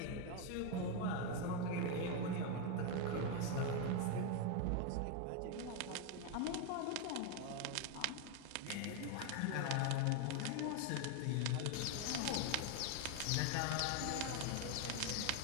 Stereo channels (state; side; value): different; both; correlation 0.01